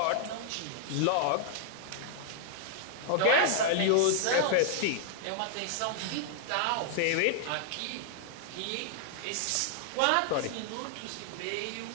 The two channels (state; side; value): different; both; correlation -0.01